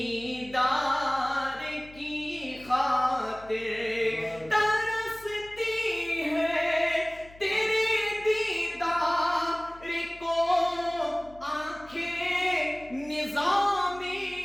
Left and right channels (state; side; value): noise; left; hum, 22 dB below the sound